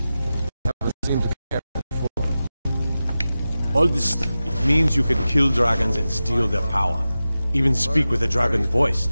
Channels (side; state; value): both; inverted; correlation -0.94